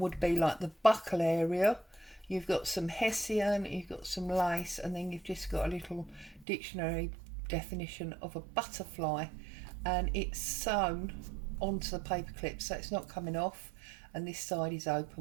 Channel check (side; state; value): left; drops out; at 6.5 s